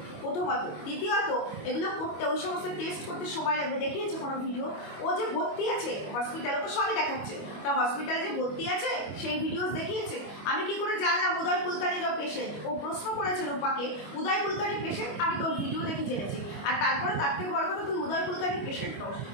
প্রথমত। দ্বিতীয়ত, এগুলো করতে, ওই সমস্ত টেস্ট করতে সময় লাগবে। দেখিয়েছে কোনো ভিডিও? ও যে ভর্তি আছে হসপিটালে, তো সবই দেখাচ্ছে, তা হসপিটালে যে ভর্তি আছে সেই ভিডিওস দেখিয়েছে। আমি কি করে জানলাম উদয় কুলকার্নিরও পেশেন্ট? ও প্রশ্ন করেছে রূপাকে, উদয় কুলকার্নি পেশেন্ট, আমি তোর ভিডিও দেখে জেনেছি। আর তারপরে তার থেকে বড় কথা, তুই উদয় কুলকার্নি পেশেন্ট নস,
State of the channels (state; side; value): late; right; 25 ms